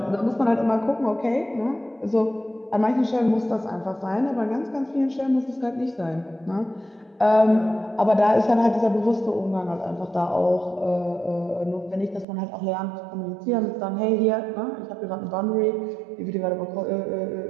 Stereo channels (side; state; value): left; drops out; at 12.2 s